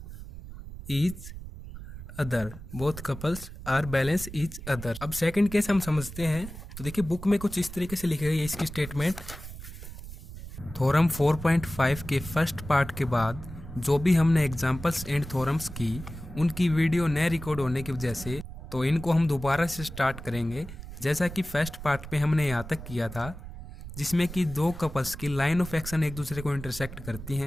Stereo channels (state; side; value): noise; right; rumble, 12 dB below the sound